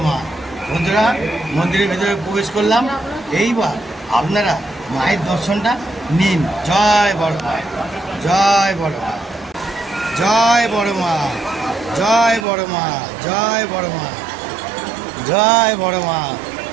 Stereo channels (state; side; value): drops out; left; at 12.5 s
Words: মা। বন্ধুরা, মন্দিরের ভিতরে প্রবেশ করলাম। এইবার আপনারা মায়ের দর্শনটা নিন। জয় বড় মা, জয় বড় মা, জয় বড় মা, জয় বড় মা, জয় বড় মা, জয় বড় মা,